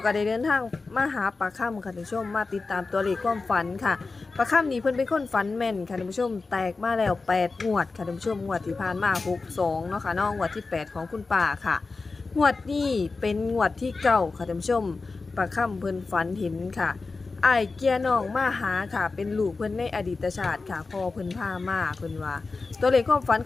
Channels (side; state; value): right; quieter; 4.0 dB